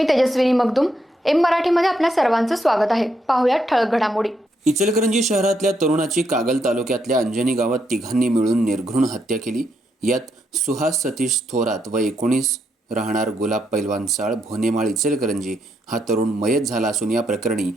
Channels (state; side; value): normal; both; correlation 0.78